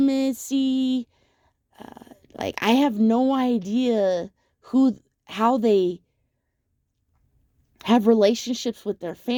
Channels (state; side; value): identical; both; correlation 1.00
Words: I have no idea how they have relationships with their